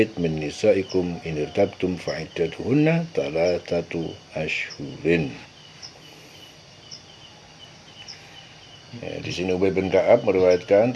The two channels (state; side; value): identical; both; correlation 1.00